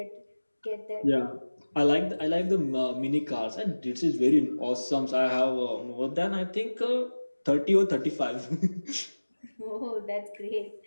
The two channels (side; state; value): both; inverted; correlation -1.00